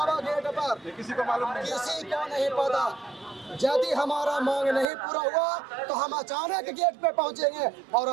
गेट पर, किसी को मालूम नहीं। किसी को नहीं पता। यदि हमारा मांग नहीं पूरा हुआ तो हम अचानक गेट पे पहुंचेंगे और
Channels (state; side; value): drops out; left; at 4.9 s